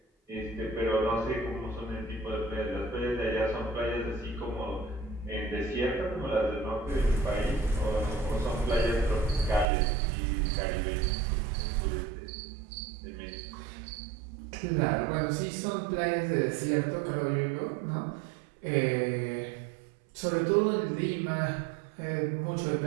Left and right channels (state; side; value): drops out; left; at 9.7 s